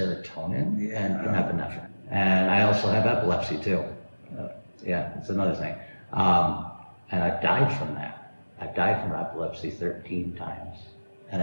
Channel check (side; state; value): both; inverted; correlation -1.00